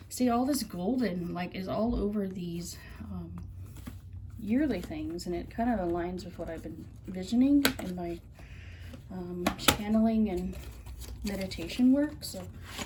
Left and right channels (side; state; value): both; identical; correlation 1.00